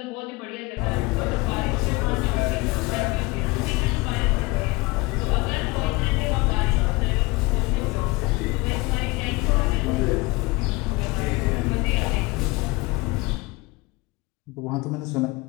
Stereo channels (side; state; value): right; quieter; 23.8 dB